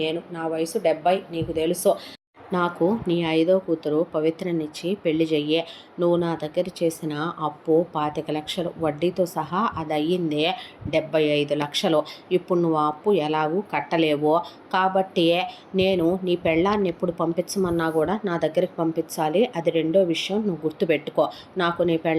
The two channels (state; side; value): identical; both; correlation 1.00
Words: నేను. నా వయసు 70, నీకు తెలుసు. నాకు నీ 5వ కూతురు పవిత్రనిచ్చి పెళ్లి చెయ్యే. నువ్వు నా దగ్గర చేసిన అప్పు 25 లక్షలు, వడ్డీతో సహా అది అయ్యిందే 75 లక్షలు. ఇప్పుడు నువ్వు ఆ అప్పు ఎలాగూ కట్టలేవు. కాబట్టి నేను నీ పెళ్ళాన్ని ఎప్పుడు పంపించమన్నా కూడా నా దగ్గరికి పంపించాలి. అది రెండో విషయం, నువ్వు గుర్తుపెట్టుకో. నాకు నీ